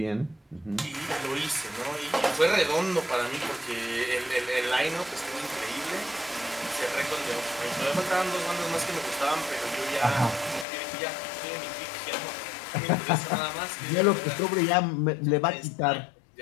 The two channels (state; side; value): drops out; right; at 10.7 s